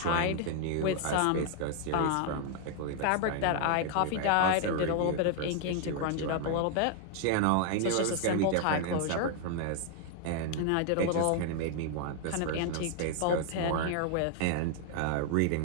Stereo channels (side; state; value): both; different; correlation 0.00